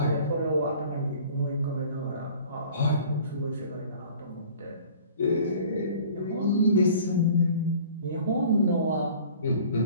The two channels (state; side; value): inverted; both; correlation -0.48